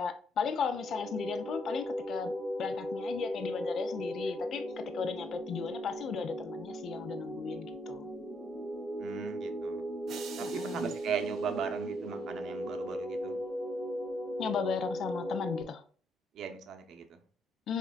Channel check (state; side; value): normal; both; correlation 0.74